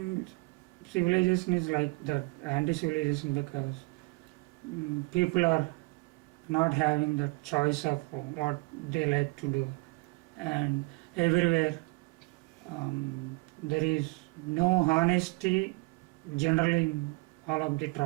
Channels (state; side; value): quieter; left; 26.7 dB